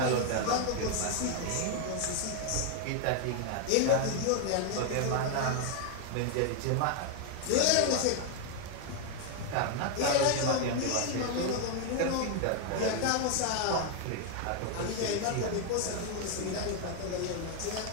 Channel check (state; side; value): different; both; correlation 0.00